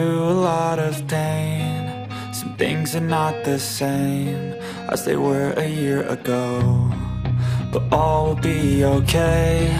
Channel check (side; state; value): both; identical; correlation 1.00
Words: a lot of pain. Some things are not the same as they were a year ago, but all will be okay.